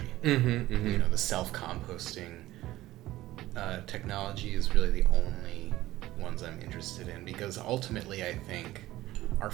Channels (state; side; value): quieter; left; 16.2 dB